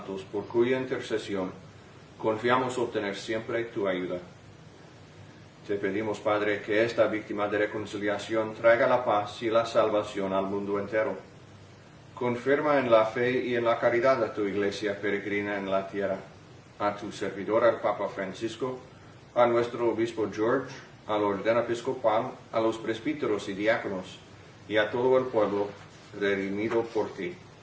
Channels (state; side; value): identical; both; correlation 1.00